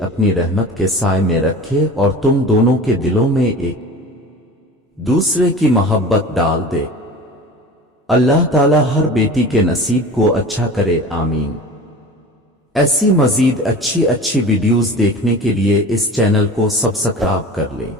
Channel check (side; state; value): both; normal; correlation 0.37